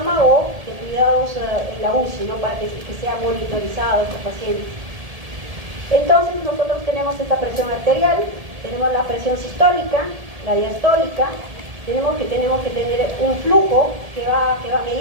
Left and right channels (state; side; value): late; left; 1.7 ms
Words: o de cuidados en la UCI, ¿no?, para que sea monitorizado este paciente. Entonces, nosotros tenemos esta presión arterial, tenemos la presión sistólica, la diastólica, tenemos que tener un flujo que va a